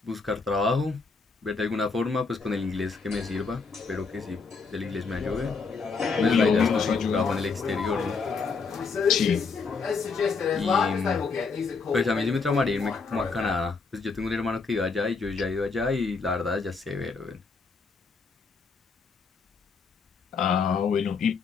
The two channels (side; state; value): right; quieter; 4.7 dB